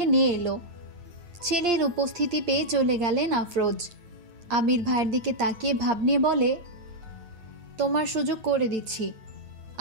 নিয়ে এলো। ছেলের উপস্থিতি পেয়ে চলে গেলেন আফরোজ। আবির ভাইয়ের দিকে তাকিয়ে ভাব নিয়ে বলে, তোমার সুযোগ করে দিচ্ছি,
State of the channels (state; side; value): late; left; 9.4 ms